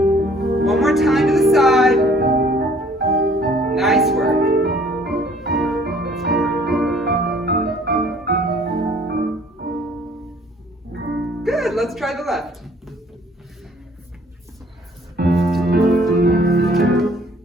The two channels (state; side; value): normal; both; correlation 0.57